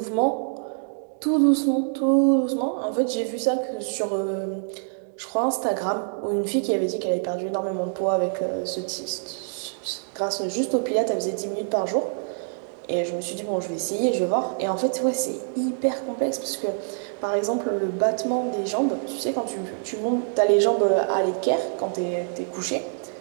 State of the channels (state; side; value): silent; left; digital silence